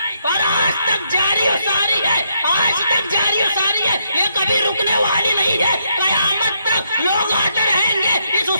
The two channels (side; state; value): both; inverted; correlation -0.76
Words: اور آج تک جاری اور ساری ہے، آج تک جاری اور ساری ہے، یہ کبھی رکنے والی نہیں ہے۔ قیامت تک لوگ آتے رہیں گے، اس